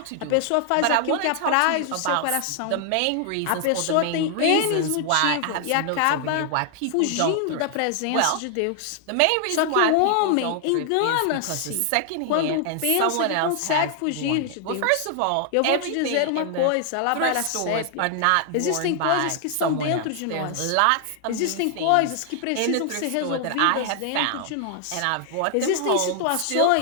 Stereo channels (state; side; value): different; both; correlation 0.00